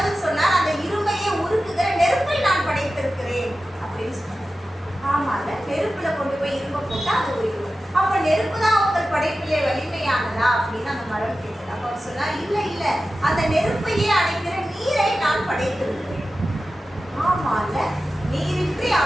சொன்னார், அந்த இரும்பையே உருக்குகிற நெருப்பை நான் படைத்திருக்கிறேன் அப்படின்னு சொன்னார். ஆமா இல்ல, நெருப்புல கொண்டு போய் இரும்பை போட்டா அது உயிரும். அப்ப நெருப்பு தான் உங்கள் படைப்பிலே வலிமையானதா அப்படின்னு அந்த மரம் கேட்டது. அப்ப அவர் சொன்னார், இல்ல இல்ல, அந்த நெருப்பையே அணைக்கிற நீரை நான் படைத்திருக்கிறேன். ஆமா இல்ல, நீரின்றி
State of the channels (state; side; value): normal; both; correlation 0.94